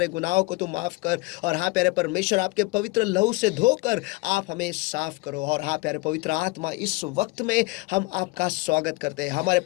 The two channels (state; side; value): quieter; right; 23.4 dB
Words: गुनाहों को तू माफ कर और हाँ प्यारे परमेश्वर, आपके पवित्र लहू से धोकर आप हमें साफ करो। और हाँ प्यारे पवित्र आत्मा, इस वक्त में हम आपका स्वागत करते हैं। हमारे